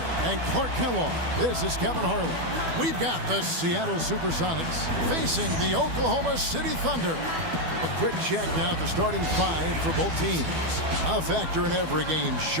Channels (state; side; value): late; left; 12 ms